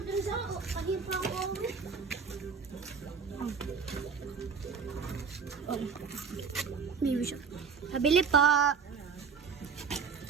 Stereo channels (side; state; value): left; quieter; 5.9 dB